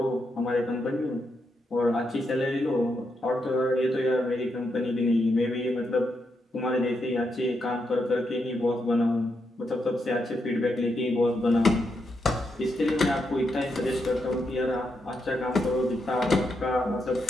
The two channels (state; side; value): normal; both; correlation 0.82